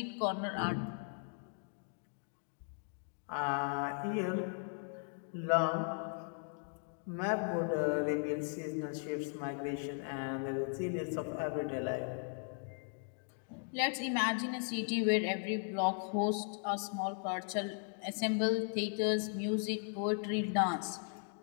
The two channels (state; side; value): silent; right; 53 dB below the other